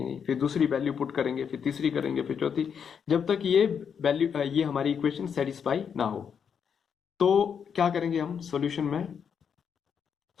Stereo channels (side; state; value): right; quieter; 7.2 dB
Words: नहीं, फिर दूसरी वैल्यू पुट करेंगे, फिर तीसरी करेंगे, फिर चौथी, जब तक ये वैल्यू, ये हमारी इक्वेशन सेटिस्फाई ना हो। तो क्या करेंगे हम सॉल्यूशन